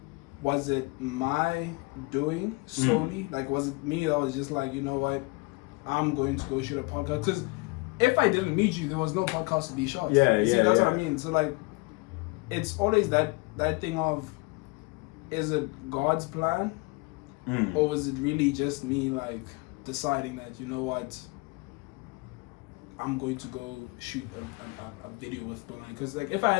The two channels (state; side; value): quieter; right; 26.8 dB